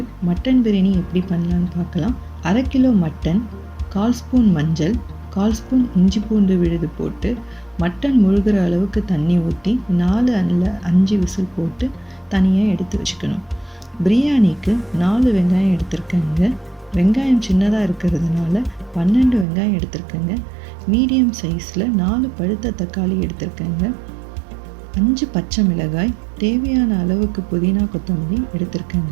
மட்டன் பிரியாணி எப்படி பண்ணலான்னு பார்க்கலாம். 1/2 கிலோ மட்டன், 1/4 ஸ்பூன் மஞ்சள், 1/4 ஸ்பூன் இஞ்சி பூண்டு விழுது போட்டு மட்டன் முழுகிற அளவுக்கு தண்ணி ஊற்றி 4 அல்ல 5 விசில் போட்டு தனியாக எடுத்து வச்சுக்கணும். பிரியாணிக்கு 4 வெங்காயம் எடுத்திருக்கேங்க. வெங்காயம் சின்னதாக இருக்கிறதுனால 12 வெங்காயம் எடுத்திருக்கேங்க. மீடியம் சைஸில் 4 பழுத்த தக்காளி எடுத்திருக்கேங்க. 5 பச்சை மிளகாய், தேவையான அளவுக்கு புதினா கொத்தமல்லி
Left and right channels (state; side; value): drops out; left; at 19.5 s